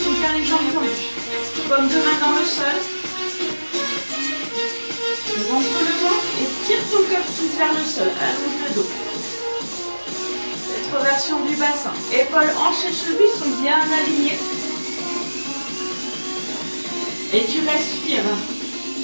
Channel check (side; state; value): both; inverted; correlation -1.00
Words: ou bien les jambes tendues. Paume de main dans le sol. Rentre le ventre et tire ton coccyx vers le sol. Allonge le dos. Rétroversion du bassin. Épaules, hanches et chevilles sont bien alignées. Et tu respires.